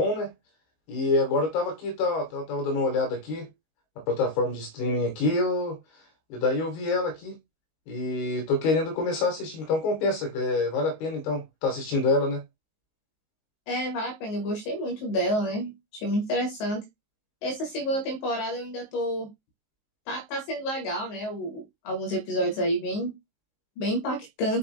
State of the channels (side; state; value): right; late; 19 ms